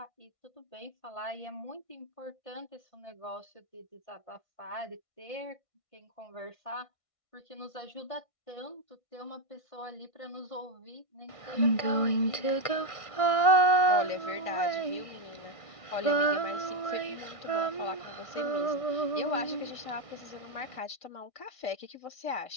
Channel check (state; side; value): late; right; 1.6 ms